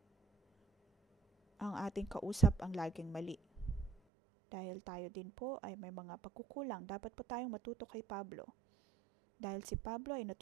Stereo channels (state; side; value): drops out; left; at 4.0 s